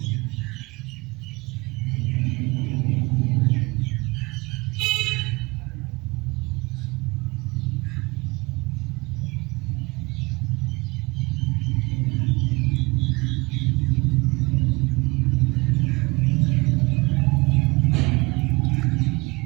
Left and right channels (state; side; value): quieter; left; 24.4 dB